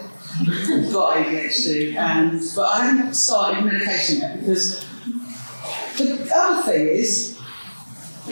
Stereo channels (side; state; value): both; inverted; correlation -1.00